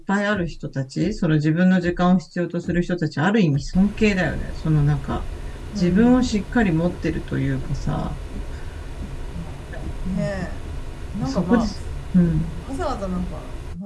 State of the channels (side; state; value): both; identical; correlation 1.00